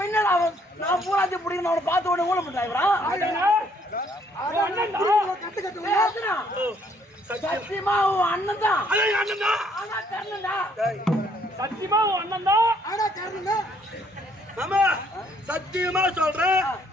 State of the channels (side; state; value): both; normal; correlation 0.66